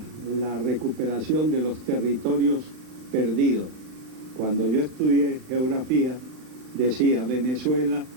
la recuperación de los territorios perdidos. Cuando yo estudié geografía, decía Venezuela,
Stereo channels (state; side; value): late; left; 39 ms